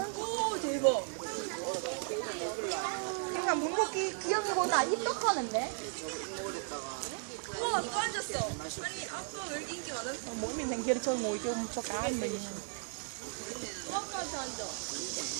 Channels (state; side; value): silent; left; 54 dB below the other